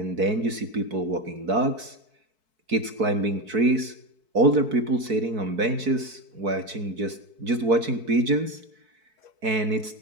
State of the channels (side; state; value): left; late; 4.6 ms